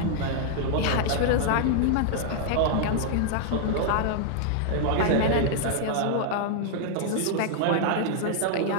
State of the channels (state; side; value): different; both; correlation -0.01